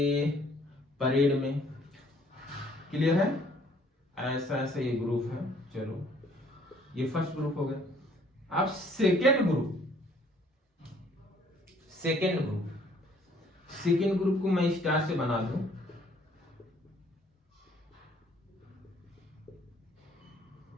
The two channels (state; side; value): normal; both; correlation 0.60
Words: परेड में, क्लियर है, ऐसा ऐसा ये ग्रुप है। चलो ये फर्स्ट ग्रुप हो गया। अब सेकेंड ग्रुप, सेकेंड ग्रुप को मैं स्टार से बना दूं,